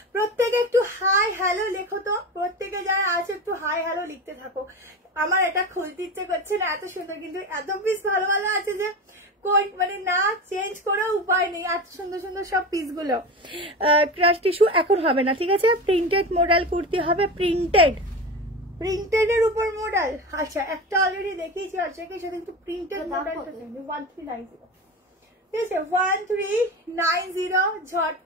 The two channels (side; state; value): both; normal; correlation 0.26